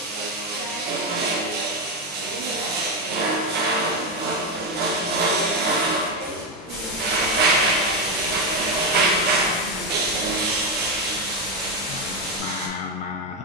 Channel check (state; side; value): normal; both; correlation 0.09